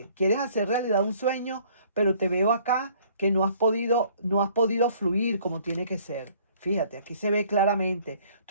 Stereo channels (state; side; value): inverted; both; correlation -0.58